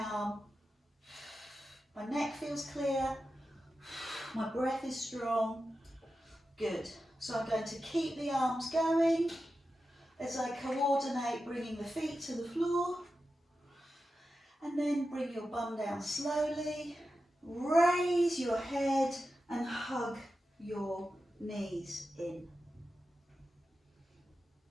arm. My neck feels clear, my breath is strong. Good. So I'm going to keep the arms going as I coordinate bringing the feet to the floor. And then bring your bum down slowly. Raise your head and hug your knees in.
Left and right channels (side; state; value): both; normal; correlation 0.91